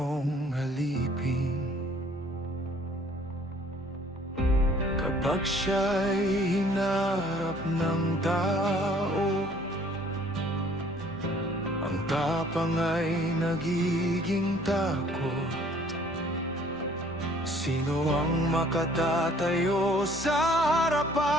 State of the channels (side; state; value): both; normal; correlation 0.57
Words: alipin? Kapag siya'y hinarap ng tao, ang tapang ay nagiging takot. Sino ang makatatayo sa